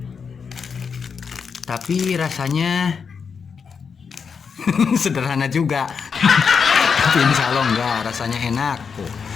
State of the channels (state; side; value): quieter; right; 6.0 dB